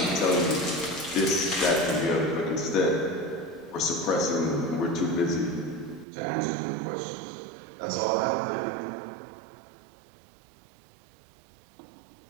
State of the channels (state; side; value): drops out; left; at 6.1 s